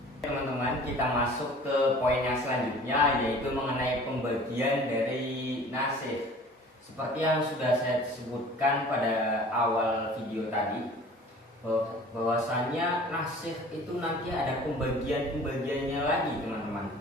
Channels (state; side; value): normal; both; correlation 0.46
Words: Teman-teman, kita masuk ke poin yang selanjutnya yaitu mengenai pembagian dari nasikh. Seperti yang sudah saya sebutkan pada awal video tadi, bahwasanya nasikh itu nanti ada pembagiannya lagi teman-teman.